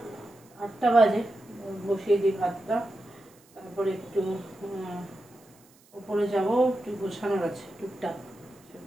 8টা বাজে, বসিয়ে দিই ভাতটা, তারপরে একটু উপরে যাব, একটু গোছানোর আছে টুকটাক।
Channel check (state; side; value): noise; right; hiss, 29 dB below the sound